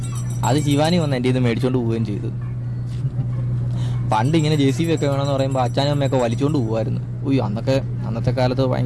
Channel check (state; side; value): identical; both; correlation 1.00